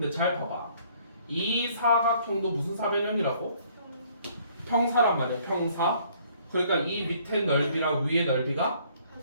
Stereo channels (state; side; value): inverted; both; correlation -0.61